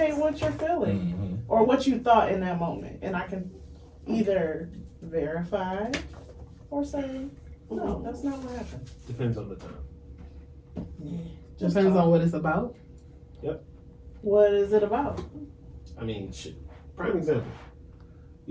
words. what you're feeling Mhm. or what you thought in that moment. And I can either verify or say, no, that's not what happened. Depends on the time. Just Depends talk. on what it's about. What is it about? I mean, shit. Prime example.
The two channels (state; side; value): identical; both; correlation 1.00